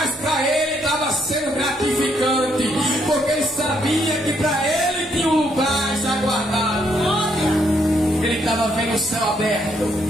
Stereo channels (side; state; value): both; normal; correlation 0.73